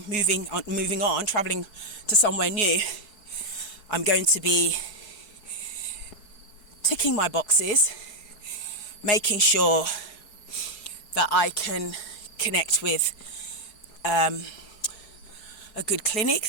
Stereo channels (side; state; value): right; late; 4.7 ms